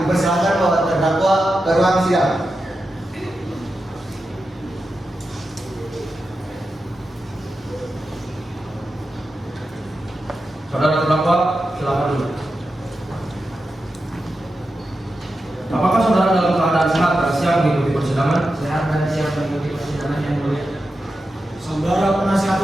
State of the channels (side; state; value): both; normal; correlation 0.90